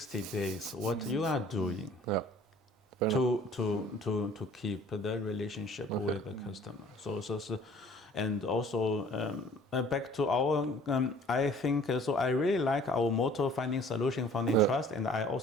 days, what you are doing to keep the relationship with the customer. So and also back to our, I think, so I really like our motto, finding solution, founding trust. And I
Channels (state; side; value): normal; both; correlation 0.52